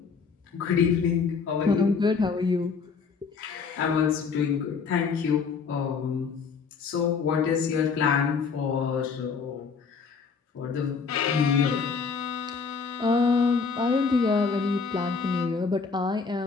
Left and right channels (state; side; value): quieter; right; 5.4 dB